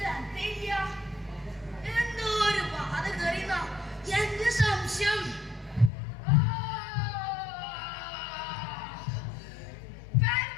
എന്തോ ഒരു ബാധ കയറിയുന്ന എന്റെ സംശയം.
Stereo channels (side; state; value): right; drops out; at 5.9 s